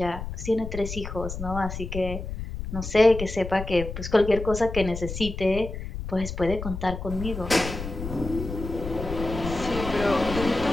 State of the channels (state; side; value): noise; left; rumble, 7 dB below the sound